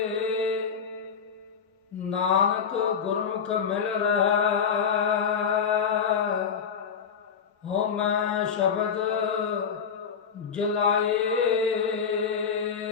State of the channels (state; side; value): quieter; right; 6.8 dB